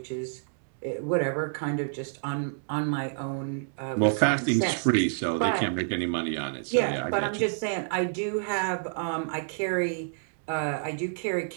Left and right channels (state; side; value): silent; left; digital silence